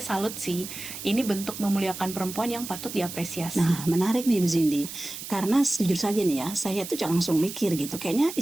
salut sih, ini bentuk memuliakan perempuan yang patut diapresiasi. Nah, menarik nih Bu Cindy. Karena jujur saja nih ya, saya tuh langsung mikir gitu. Kayaknya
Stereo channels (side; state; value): right; noise; hiss, 10 dB below the sound